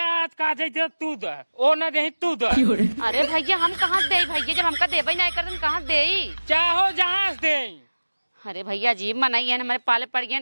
आज का दे तू दे ओ ना दे तू दे। अरे भैया हम कहाँ दे भैया जब हमका देबे नहीं कर कहाँ दे चाहो जहाँ दे। अरे भैया जी मनाई है हमारे पाले पड़ गए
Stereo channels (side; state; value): both; inverted; correlation -1.00